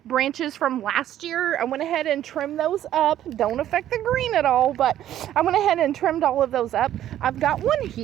branches from last year. I went ahead and trimmed those up. Don't affect the green at all, but I went ahead and trimmed all of those up. I've got one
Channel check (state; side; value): quieter; left; 12.0 dB